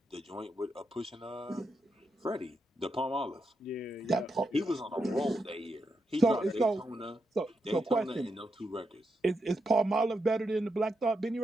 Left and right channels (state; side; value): normal; both; correlation 0.84